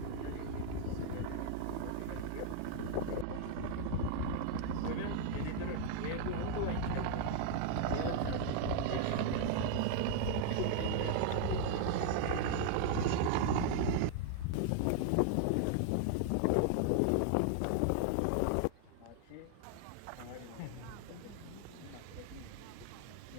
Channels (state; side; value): different; both; correlation 0.00